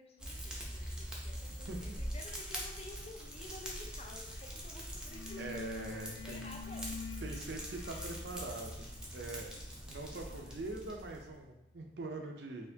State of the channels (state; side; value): normal; both; correlation 0.47